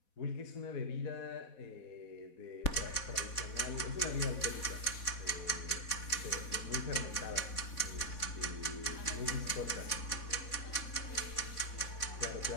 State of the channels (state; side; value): late; right; 4.1 ms